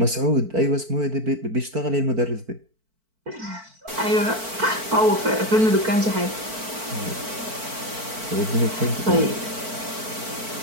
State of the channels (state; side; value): late; left; 4.5 ms